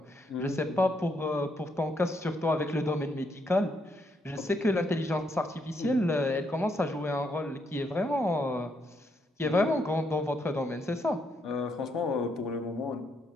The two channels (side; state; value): both; normal; correlation 0.76